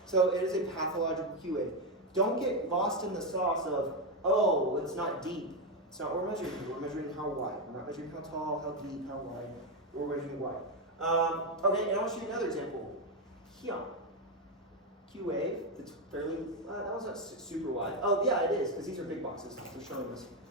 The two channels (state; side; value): normal; both; correlation 0.07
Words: So it is a pathological Q wave. Don't get lost in the sauce of, oh, it's not deep. It's not what we're measuring. We're measuring how wide. We're not measuring how tall, how deep, how wide. We're measuring wide. Okay, and I'll show you another example. Here. Q wave, it's fairly, that was not super wide. Oh yeah, it is, because these are big boxes. They're showing us.